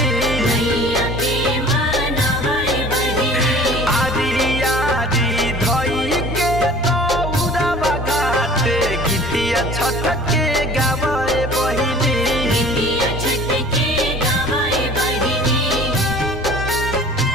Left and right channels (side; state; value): both; normal; correlation 0.46